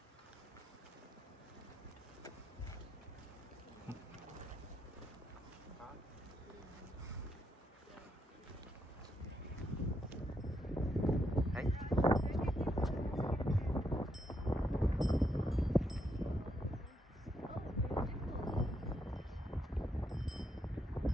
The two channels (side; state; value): both; normal; correlation 0.78